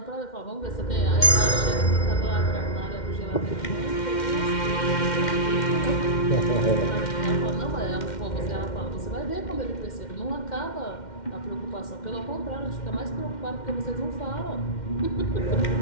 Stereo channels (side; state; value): right; late; 2.1 ms